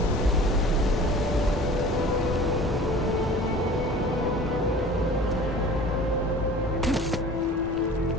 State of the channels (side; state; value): both; normal; correlation 0.43